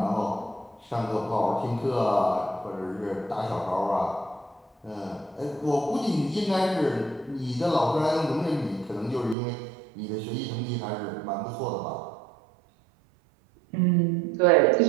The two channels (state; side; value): drops out; left; at 9.3 s